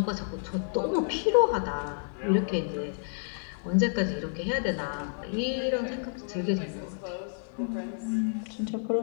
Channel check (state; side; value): silent; right; digital silence